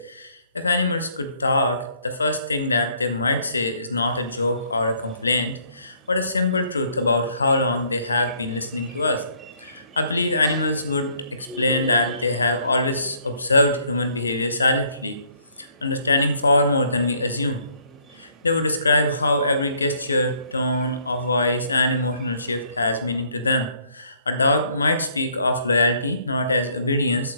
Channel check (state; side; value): inverted; both; correlation -0.65